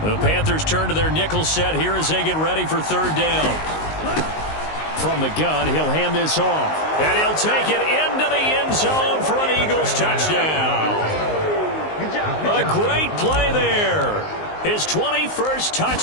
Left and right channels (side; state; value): right; late; 19 ms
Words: The Panthers turn to their nickel set here as they get ready for 3rd down. From the gun, he'll hand this off. And he'll take it into the end zone for an Eagles touchdown. A great play there. His 21st